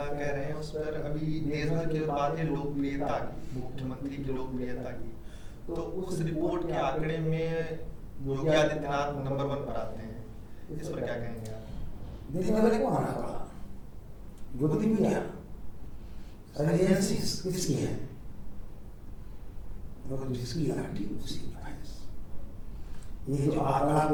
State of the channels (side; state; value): both; identical; correlation 1.00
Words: कह रहे हैं उस पर, अभी देश भर की बात है लोकप्रियता की, मुख्यमंत्री की लोकप्रियता की, तो उस रिपोर्ट के आंकड़े में योगी आदित्यनाथ नंबर 1 पर आते हैं, इस पर क्या कहेंगे आप? देखने वाले को आना पड़ा, गोदी मीडिया एजेंसीज किसकी है? जिसकी लाठी उसी की भैंस। ये जो आंकड़ा